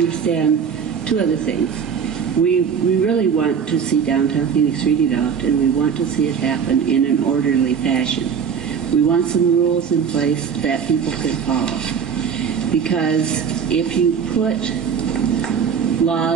two other things. We really want to see downtown Phoenix redeveloped, and we want to see it happen in an orderly fashion. We want some rules in place that people can follow. Because if you put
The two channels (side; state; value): left; quieter; 6.9 dB